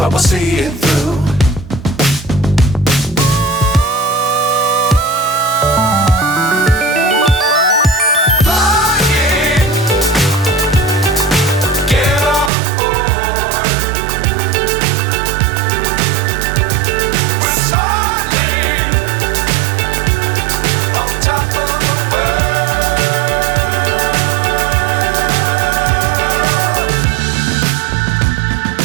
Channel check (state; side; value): drops out; left; at 12.5 s